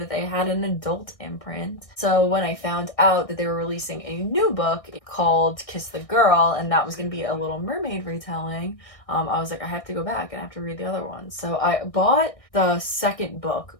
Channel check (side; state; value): right; late; 1.6 ms